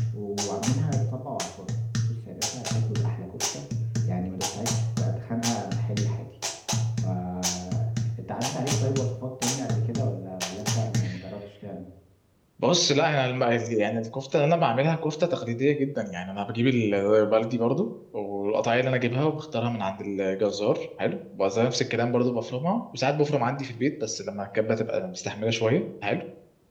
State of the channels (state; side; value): identical; both; correlation 1.00